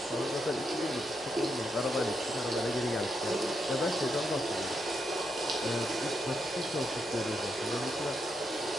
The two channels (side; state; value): both; normal; correlation 0.81